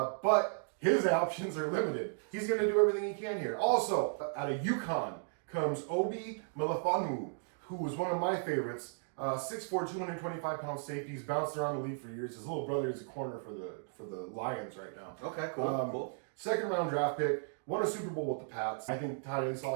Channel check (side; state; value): left; silent; digital silence